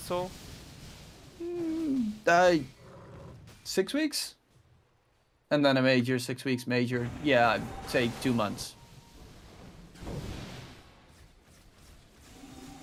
6 weeks? And then a major, 6 weeks major. Yeah, I'd say 2 months.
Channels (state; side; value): identical; both; correlation 1.00